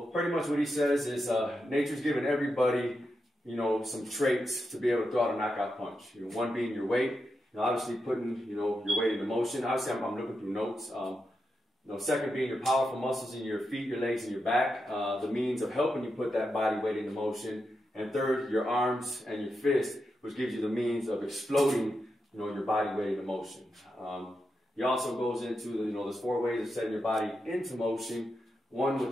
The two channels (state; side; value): normal; both; correlation 0.87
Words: pretty much what he says is nature's given everybody, some traits to be able to throw out a knockout punch. One being your weight, obviously putting, your weight into motion. Obviously, I'm looking through notes. Second being your powerful muscles in your feet, your legs, and your back, the means of helping you put that body weight into motion. And third, your arms and your fist, which gives you the means of exploding, your body weight into motion. He also goes into there's 4 ways of setting your body into motion. One,